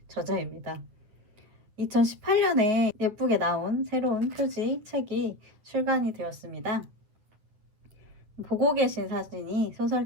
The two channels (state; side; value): late; left; 9.6 ms